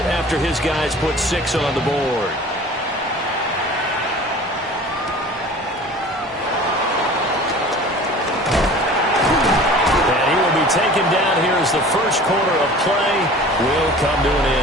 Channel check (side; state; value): both; normal; correlation 0.43